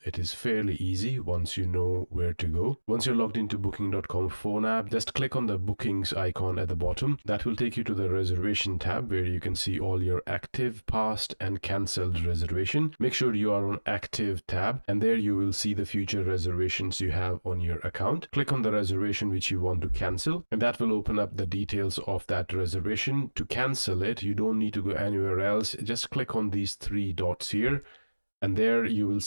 it is fairly easy once you know where to go. Once you're logged into booking.com phone app, just click on the bookings icon at the bottom. That will take you to the reservation tab where you can see all your active, past and cancelled reservation. Make sure you are on active tab, and there you will see the future reservations you have on your account. Click on the reservation which you want to cancel, and that will open up the details of that reservation. To cancel it, you don't need to go anywhere else. Just click on these three dots here, and there you will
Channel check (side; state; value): both; inverted; correlation -1.00